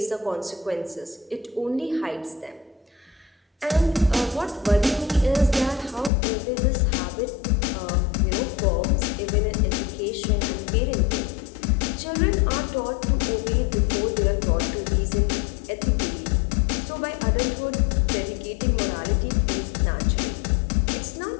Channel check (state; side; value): drops out; right; at 6.1 s